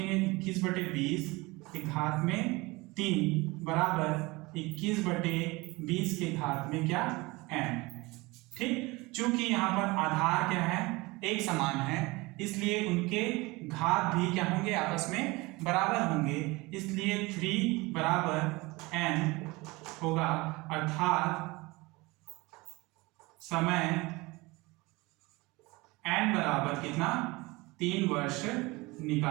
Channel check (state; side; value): quieter; left; 23.2 dB